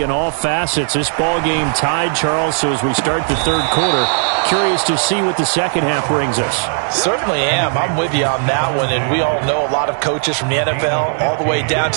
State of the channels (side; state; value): left; silent; 66 dB below the other